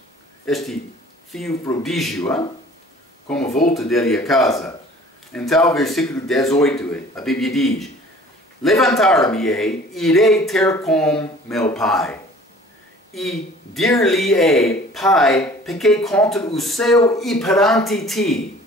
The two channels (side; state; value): both; normal; correlation 0.49